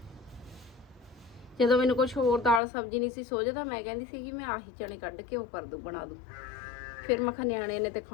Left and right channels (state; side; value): drops out; right; at 2.6 s